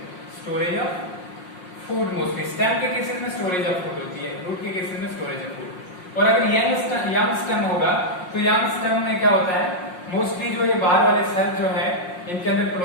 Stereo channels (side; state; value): right; late; 5.6 ms